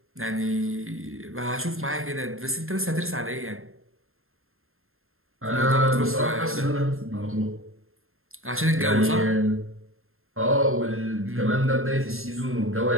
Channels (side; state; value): left; late; 0.61 ms